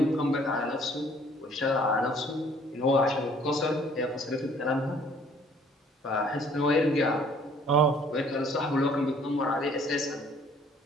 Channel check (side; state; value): both; normal; correlation 0.58